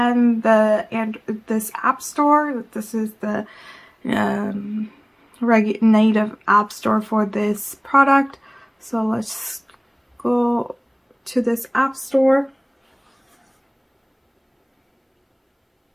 this App Store. This is the native App Store for this product. So let's go to this App Store.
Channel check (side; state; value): both; identical; correlation 1.00